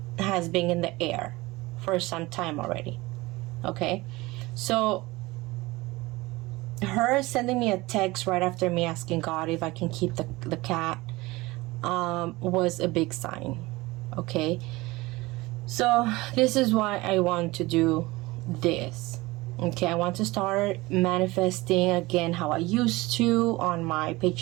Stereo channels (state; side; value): quieter; left; 21.1 dB